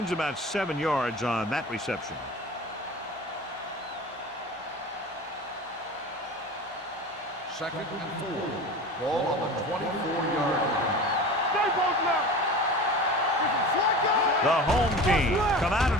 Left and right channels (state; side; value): normal; both; correlation 0.34